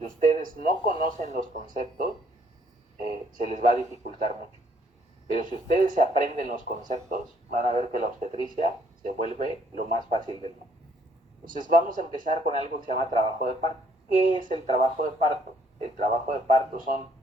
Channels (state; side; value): normal; both; correlation 0.66